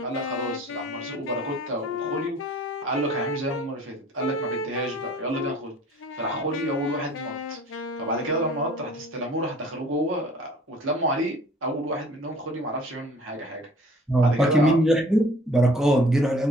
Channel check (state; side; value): normal; both; correlation 0.50